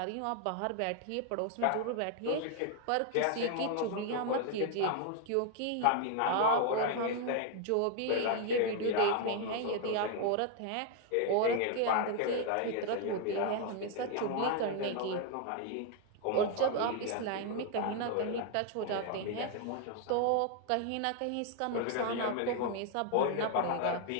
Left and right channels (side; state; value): both; different; correlation 0.00